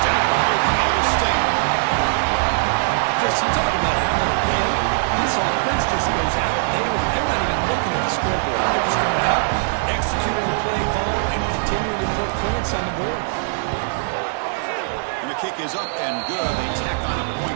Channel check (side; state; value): left; silent; 65 dB below the other